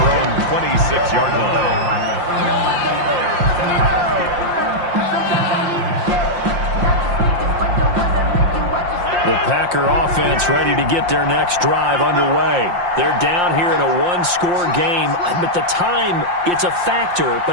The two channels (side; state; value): left; late; 5.7 ms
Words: own 26-yard line. The Packer offense ready to get their next drive underway. They're down here in a 1-score game. But the time, it's a factor,